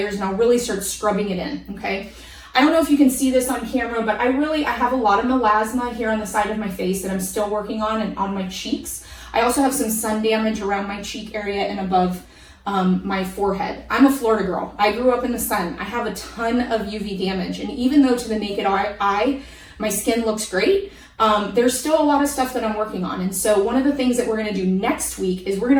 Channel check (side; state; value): both; identical; correlation 1.00